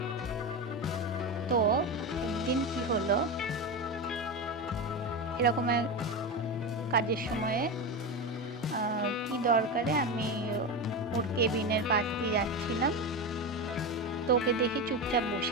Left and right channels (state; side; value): normal; both; correlation 0.19